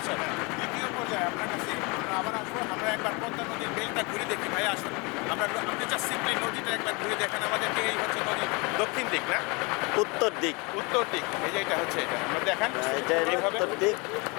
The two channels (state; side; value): quieter; right; 28.5 dB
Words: দ্বিতীয় পর্যায়ে আপনার কাছে আমরা আবার আসবো। আমরা একবার পদ্মা নদীর বেলটা ঘুরে দেখি। ভাই আসুন, আপনি যা সিম্পলি নদীটা একবার ঘুরে দেখেন আমাদেরকে। এই হচ্ছে নদীর দক্ষিণ দিক না উত্তর দিক? উত্তর দিক। এই যে এটা হচ্ছে, এটা আমরা দেখান। এটা উত্তর দিক,